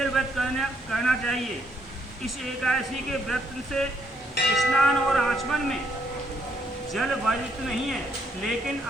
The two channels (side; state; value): both; normal; correlation 0.71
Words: करना चाहिए। इस एकादशी के व्रत से स्नान और आचमन में जल वर्जित नहीं है, लेकिन